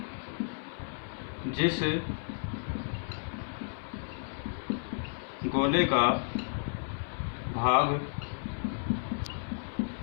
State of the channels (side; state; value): right; silent; 56 dB below the other